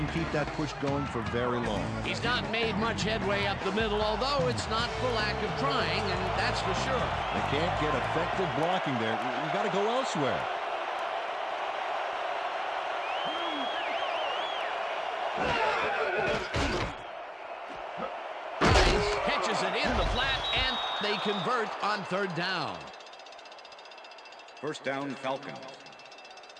keep that push going for very long. He's not made much headway up the middle, although it's not for lack of trying, and that's for sure. They can't get effective blocking there. You got to go elsewhere. Catches it in the flat, and they convert on third down. First down, Falcons.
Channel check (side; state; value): both; identical; correlation 1.00